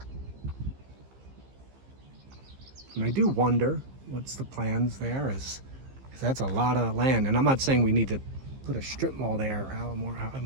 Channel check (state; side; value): late; left; 15 ms